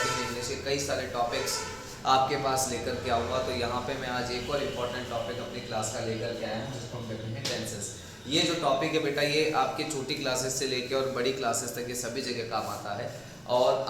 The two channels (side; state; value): both; identical; correlation 1.00